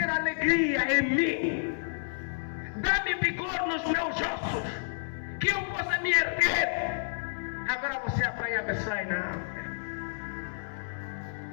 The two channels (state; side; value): silent; right; 58 dB below the other